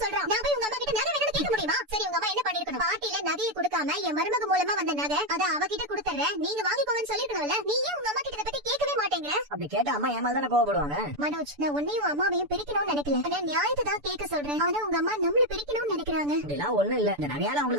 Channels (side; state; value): left; late; 6.9 ms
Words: சொல்றான். நான் போய் உங்க அம்மா கிட்ட நகை வேணும்னு கேட்க முடியுமா? சரி, உங்க அம்மா என்ன பண்ணிருக்கணும்? பாட்டில நகையை கொடுக்காம என் மருமக மூலமா வந்த நகை அத அவகிட்ட கொடுத்துறேன், நீங்க வாங்கிக்கோங்கன்னு சொல்லிருக்கணும்ல. நீ ஏன் உங்க அம்மா கிட்ட இத பத்தி கேட்கவே மாட்டேங்கிற? அப்படி கேட்டா அம்மா ஏமால் தானே கோவப்படுவாங்க. மனோஜ், நான் உன்னையும் அம்மாவையும் பிரிக்கணும்னு நினைக்கல. நான் நியாயத்தை தான் கேட்க சொல்றேன். ஆனா உங்க அம்மா நம்மள பிரிக்கணும்னு நினைக்கிறாங்க. அப்படிலாம் ஒண்ணும் இல்ல. இந்த நகையால